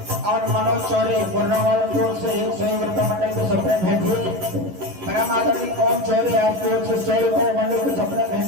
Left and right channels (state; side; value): late; left; 11 ms